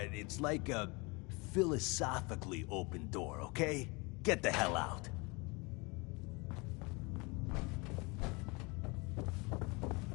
it's like a philosophically open door, okay? Get the hell out.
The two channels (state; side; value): quieter; right; 27.6 dB